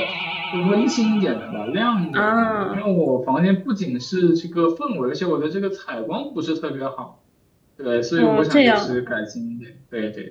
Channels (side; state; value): both; identical; correlation 1.00